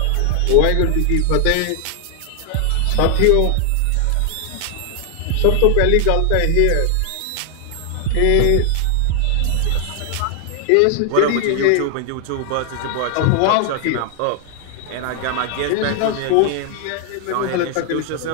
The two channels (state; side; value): different; both; correlation 0.00